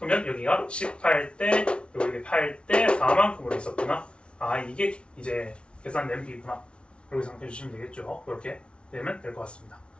여기가 18대 여기 8대 4만큼으로 있었구나. 아 이게 이제 계산된 비구나. 이렇게 생각해 주시면 되겠죠. 그렇게 되면 될 것 같습니다.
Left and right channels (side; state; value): right; late; 0.058 ms